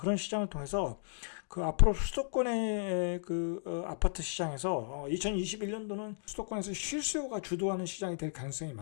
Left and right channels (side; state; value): right; silent; digital silence